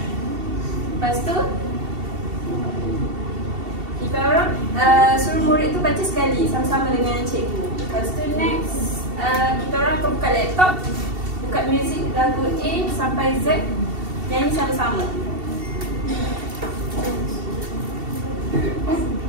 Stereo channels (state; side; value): late; left; 2.7 ms